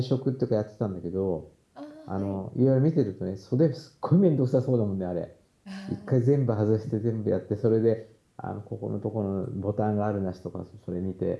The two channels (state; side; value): identical; both; correlation 1.00